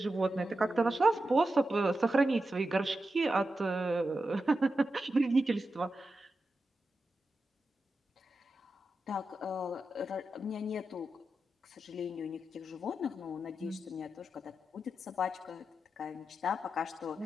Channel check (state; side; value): normal; both; correlation 0.90